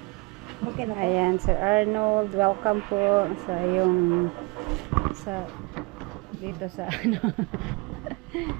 Okay na. Ayan, Sir Arnold, welcome po sa dito sa ano.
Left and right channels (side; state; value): left; quieter; 27.9 dB